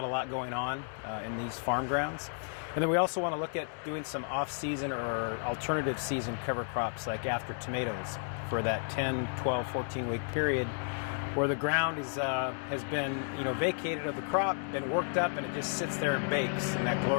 a lot going on in these farm grounds. And then we also want to look at doing some off-season or alternative season cover crops, like after tomatoes, for that 10, 12, 14-week period where the ground has been vacated of the crop, been worked up, and it just sits there and bakes in that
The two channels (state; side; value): silent; right; 56 dB below the other